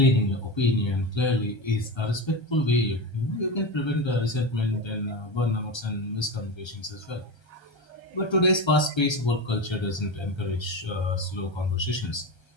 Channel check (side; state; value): right; late; 1.3 ms